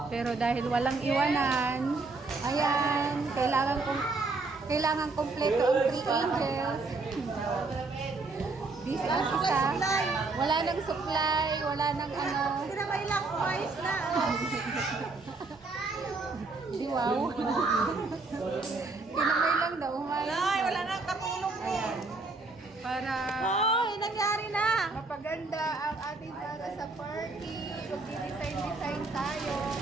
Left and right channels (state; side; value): quieter; left; 3.7 dB